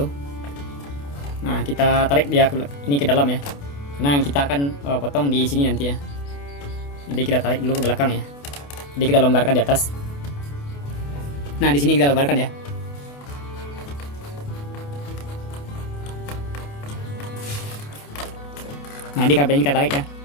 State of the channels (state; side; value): late; right; 28 ms